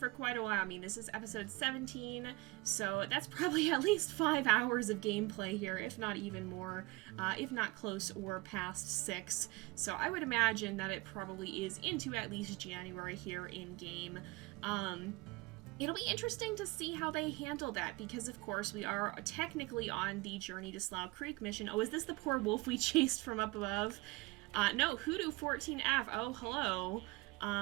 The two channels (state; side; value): quieter; left; 23.7 dB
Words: quite a while. I mean, this is episode 17, so that's probably at least 5 hours of gameplay here, if not even more, if not close or past 6. So I would imagine that it probably is into at least January here in game. It'll be interesting to see how they handle that, because of course we are technically on the Journey to Slough Creek mission. Oh, is this the poor wolf we chased from up above? No, Hoodoo 14F. Oh, hello.